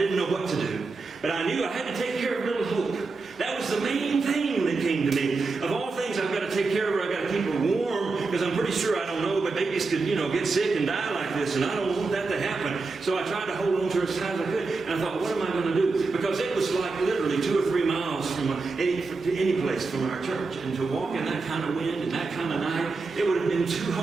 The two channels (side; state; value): left; quieter; 4.0 dB